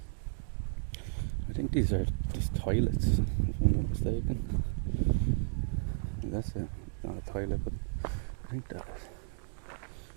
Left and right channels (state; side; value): silent; left; digital silence